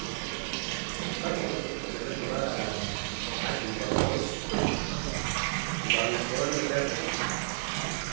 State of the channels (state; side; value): silent; left; digital silence